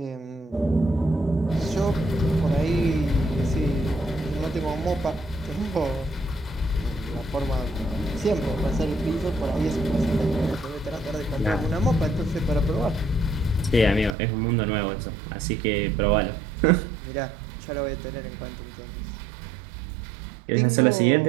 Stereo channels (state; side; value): drops out; left; at 14.2 s